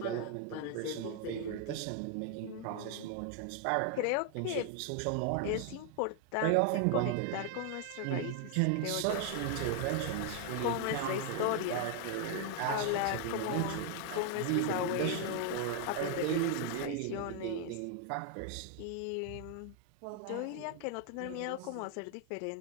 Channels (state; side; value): different; both; correlation 0.00